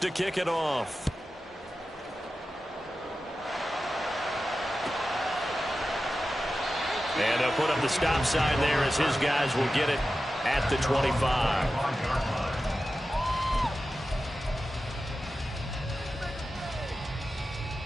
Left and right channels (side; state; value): both; normal; correlation 0.93